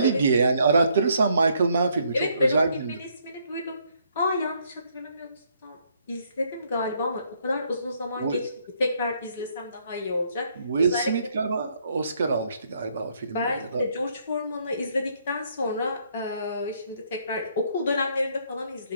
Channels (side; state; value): both; inverted; correlation -0.69